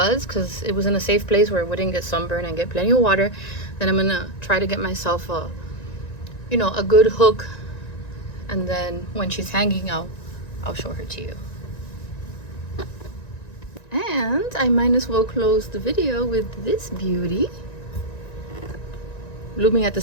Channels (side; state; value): right; late; 1.9 ms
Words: because it was in a safe place where it wouldn't get sunburned and get plenty of water. Then I'm gonna try to get myself a good hook. And then when she's hanging, I'll show her to you. And I might as well close the video with this beauty, blooming at the